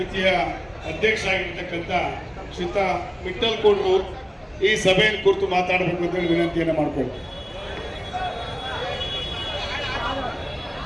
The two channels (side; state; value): both; identical; correlation 1.00